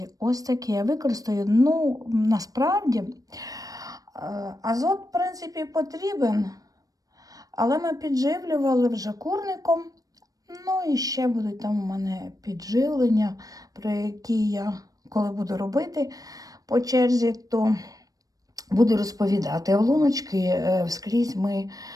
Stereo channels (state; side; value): late; left; 0.18 ms